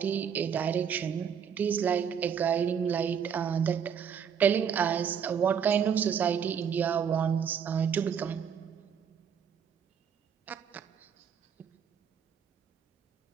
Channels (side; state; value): left; quieter; 7.5 dB